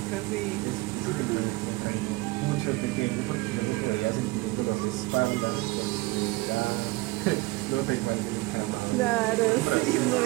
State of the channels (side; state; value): left; quieter; 21.7 dB